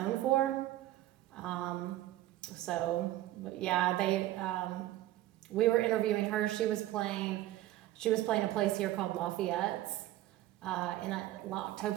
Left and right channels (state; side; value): quieter; left; 15.1 dB